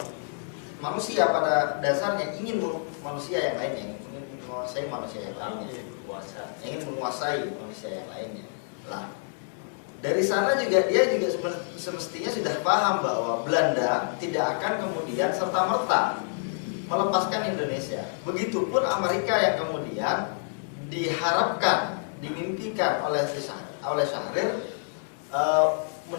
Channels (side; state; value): right; silent; digital silence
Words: manusia pada dasarnya ingin manusia yang lainnya, ingin menguasai manusia yang lainnya, ingin menguasai manusia yang lainnya. Lah, dari sana juga dia juga semestinya sudah paham bahwa Belanda tidak akan kemudian serta-merta melepaskan Indonesia. Begitupun Amerika yang kemudian diharapkan, dimimpikan oleh Syahrir